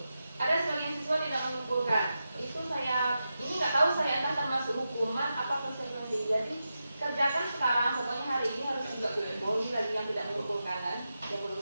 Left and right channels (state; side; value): inverted; both; correlation -0.90